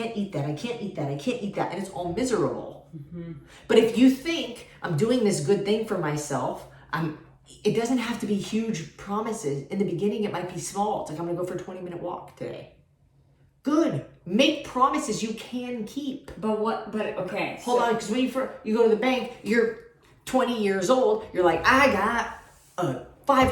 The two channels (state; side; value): identical; both; correlation 1.00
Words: eat that, and it's all miserable. Mm-hmm. But if you think, I'm doing this good thing for myself, it doesn't have to be huge promises. In the beginning, it might be small. It's like, I'm gonna go for a 20-minute walk today. Good. Make promises you can keep. Okay. Hold on, because when you go to the bank, you're 20 years old, you're like, I got a